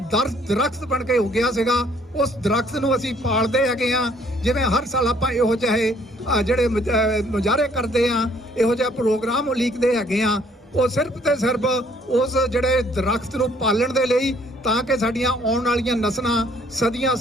ਦਰਖਤ ਬਣ ਕੇ ਉੱਗਿਆ ਸੀਗਾ। ਉਸ ਦਰਖਤ ਨੂੰ ਅਸੀਂ ਪਾਲਦੇ ਹੈਗੇ ਆ। ਜਿਵੇਂ ਹਰ ਸਾਲ ਆਪਾਂ ਇਹੋ ਜਿਹੇ ਜਿਹੜੇ ਮੁਜ਼ਾਹਰੇ ਕਰਦੇ ਆ, ਇਹੋ ਜਿਹਾ ਪ੍ਰੋਗਰਾਮ ਉਲੀਕਦੇ ਹੈਗੇ ਆ, ਉਹ ਸਿਰਫ ਤੇ ਸਿਰਫ ਉਸ ਜਿਹੜੇ ਦਰਖਤ ਨੂੰ ਪਾਲਣ ਦੇ ਲਈ, ਤਾਂ ਕਿ ਸਾਡੀਆਂ ਆਉਣ ਵਾਲੀਆਂ ਨਸਲਾਂ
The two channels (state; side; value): normal; both; correlation 0.62